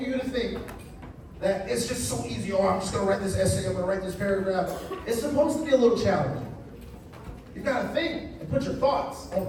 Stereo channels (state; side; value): identical; both; correlation 1.00